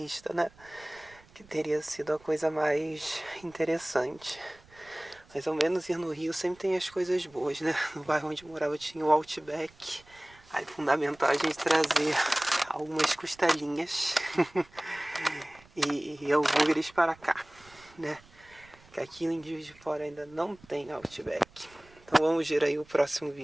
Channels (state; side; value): noise; right; rumble, 26 dB below the sound